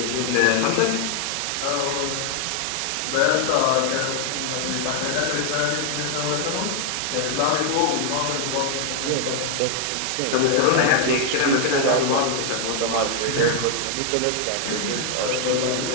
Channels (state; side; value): different; both; correlation 0.00